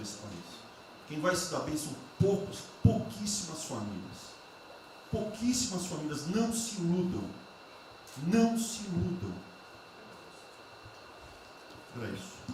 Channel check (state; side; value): identical; both; correlation 1.00